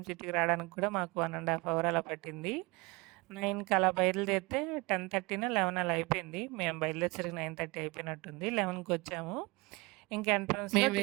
సిటీకి రావడానికి కూడా మాకు 1½ అవర్ అలా పట్టింది. 9కి అలా బయలుదేరితే 10:30నో 11 అలా అయిపోయింది. మేము బయలుదేరేసరికి 9:30 అయిపోయినట్టుంది. 11కి వచ్చాము. ఇంక ఎంట్రన్స్‌లో మేము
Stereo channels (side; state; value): left; quieter; 25.2 dB